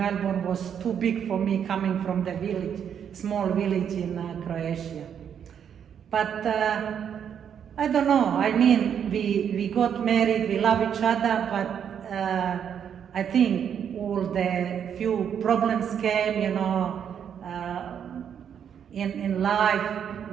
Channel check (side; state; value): left; quieter; 8.3 dB